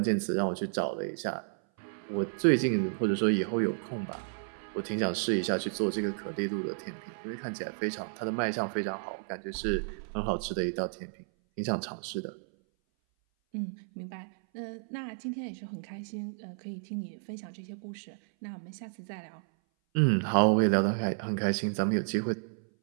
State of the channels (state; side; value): silent; left; 56 dB below the other